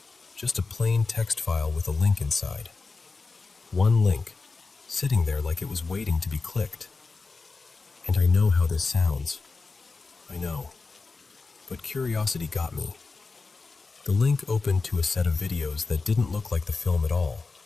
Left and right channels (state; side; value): quieter; right; 4.1 dB